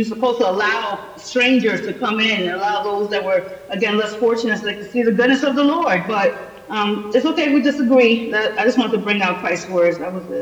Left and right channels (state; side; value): identical; both; correlation 1.00